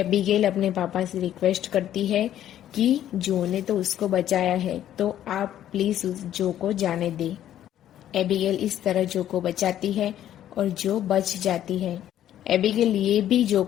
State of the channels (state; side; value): quieter; right; 11.6 dB